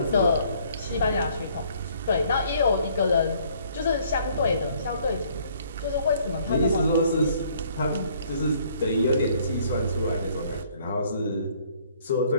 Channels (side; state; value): both; inverted; correlation -0.62